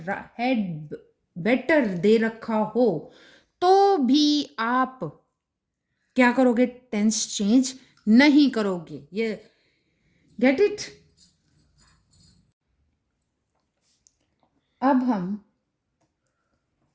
हैड बेटर दे रखा हो तो भी आप क्या करोगे, टेंस चेंज नहीं करोगे। ये गेट इट। अब हम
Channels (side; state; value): both; identical; correlation 1.00